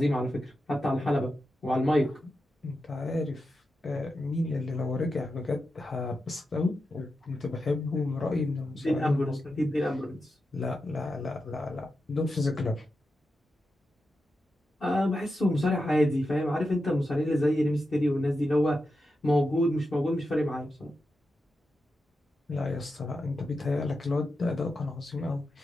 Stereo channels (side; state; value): both; normal; correlation 0.89